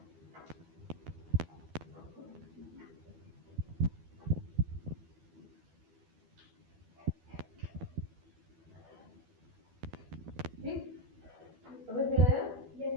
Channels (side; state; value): left; late; 12 ms